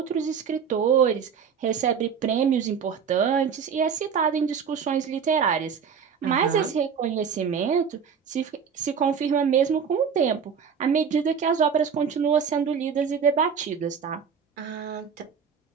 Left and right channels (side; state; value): left; quieter; 6.8 dB